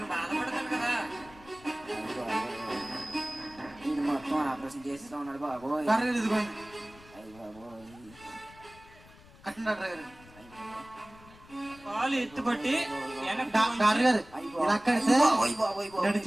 బాధపడతాడు కదా. ఇది మొత్తం ఆపరేషన్ చేసేస్తా ఉన్నాడు బాబోయ్. డాక్టర్ గారు ఇదిగోండి అయ్యి బాబోయ్. కట్టండి డాక్టర్ గారు. కాలు ఎత్తుపట్టి వెనక్కి డాక్టర్ గారు ఇలా కడితే బాబోయ్ బాబోయ్ బాబోయ్.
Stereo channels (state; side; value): noise; left; rumble, 23 dB below the sound